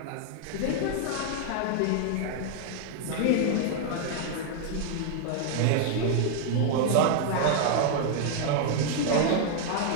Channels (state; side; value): different; both; correlation 0.00